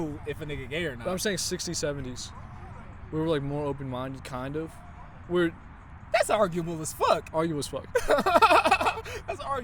if a nigga gay or not. But I'm saying 60s, 70s. We were like more open-minded, kind of. That's arguable as fuck. Arguable as fuck. That's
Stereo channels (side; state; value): both; identical; correlation 1.00